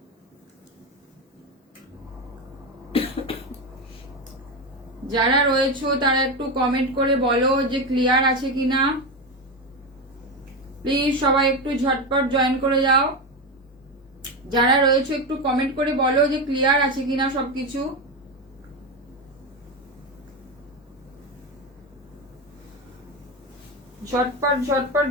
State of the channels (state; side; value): normal; both; correlation 0.16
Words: যারা রয়েছে তারা একটু কমেন্ট করে বলো যে ক্লিয়ার আছে কিনা। প্লিজ সবাই একটু ঝটপট জয়েন করে যাও, যারা রয়েছে একটু কমেন্ট করে বলো যে ক্লিয়ার আছে কিনা সবকিছু। ঝটপট ঝটপট